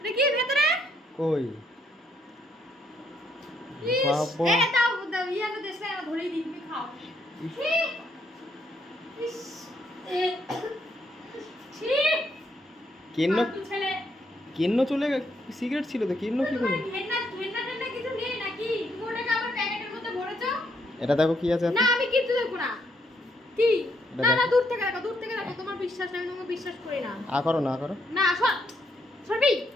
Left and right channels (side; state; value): both; normal; correlation 0.73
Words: কি ভেতরে? কই ইস, বাবা, এ দাও দাও, ইয়ানো দেশে আমি ধরেই দিই, তুমি খাও। ছি! ইস, এ ছি! কেন্ন ফালতু ছেলে। কেন্ন চলে সিগারেট ছিল তো, কেন্ন কি করে? ঘেন্না ঘেন্না টেন্না কিছু নেই নাকি? তুমি ওটাকে আবার প্যাকেটের মধ্যে ভরেছো? এটা দেখো কি আছে না, আমি কিচ্ছু দেখবো না। কি? এটা না না, দেখো। দূর থেকে রাখো, দূর থেকে রাখো। তোমার বিশ্বাস নেই, আমি তোমাকে বিশ্বাস করি না। আ করো না, আ করো। না, সর সরবি।